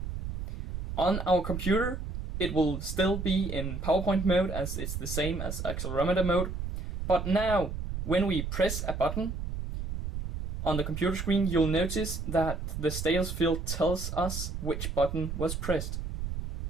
On our computer, it will still be in PowerPoint mode as it's the same as accelerometer mode, but now when we press a button on the computer screen, you'll notice that the status field tells us which button was pressed.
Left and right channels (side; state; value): right; noise; rumble, 5 dB below the sound